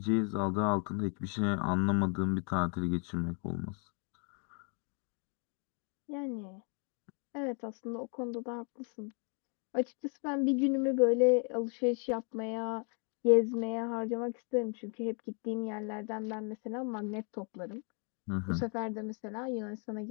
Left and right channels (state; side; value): quieter; right; 39.4 dB